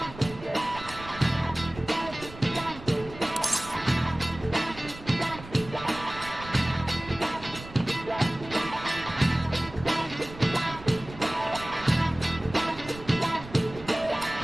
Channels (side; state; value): right; noise; rumble, 15 dB below the sound